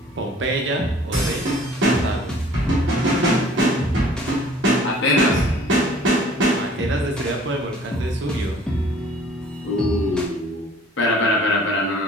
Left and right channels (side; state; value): both; normal; correlation 0.52